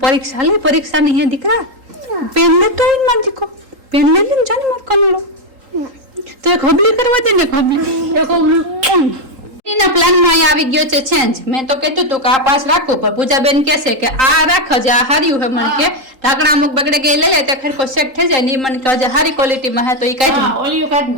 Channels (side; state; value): left; late; 3.8 ms